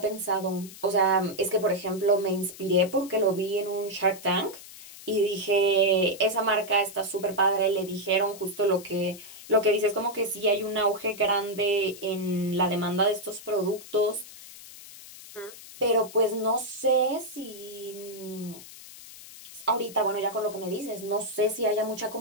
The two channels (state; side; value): noise; left; hiss, 16 dB below the sound